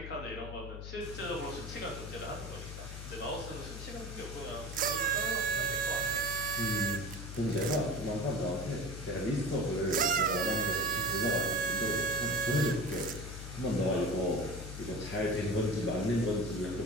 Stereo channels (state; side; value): noise; left; hum, 9 dB below the sound